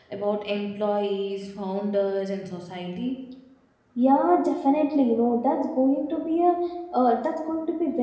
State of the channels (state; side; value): identical; both; correlation 1.00